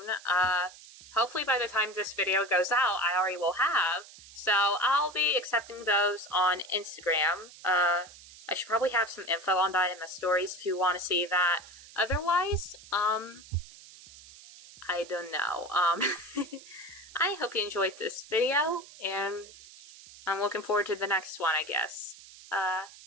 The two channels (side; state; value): right; noise; hiss, 19 dB below the sound